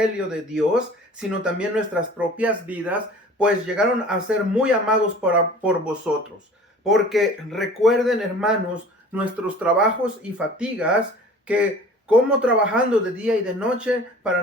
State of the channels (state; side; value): normal; both; correlation 0.45